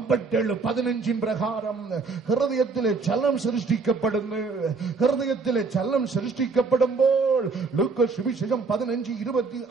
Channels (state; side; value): quieter; left; 4.4 dB